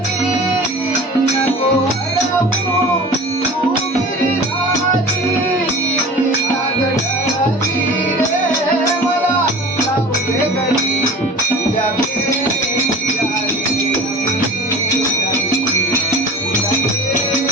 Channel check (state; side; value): normal; both; correlation 0.38